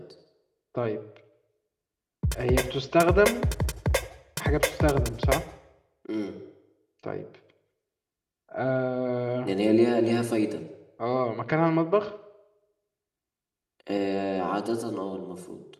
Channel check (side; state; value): both; identical; correlation 1.00